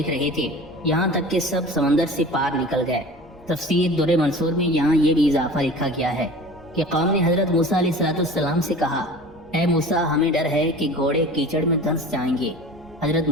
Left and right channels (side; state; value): both; normal; correlation 0.39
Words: رہے تھے، یہاں تک کہ سب سمندر سے پار نکل گئے۔ تفسیر در منصور میں یہاں یہ بھی اضافہ لکھا گیا ہے کہ قوم نے حضرت موسیٰ علیہ السلام سے کہا، اے موسیٰ ہمیں ڈر ہے کہ گھوڑے کیچڑ میں دھنس جائیں گے۔ حضرت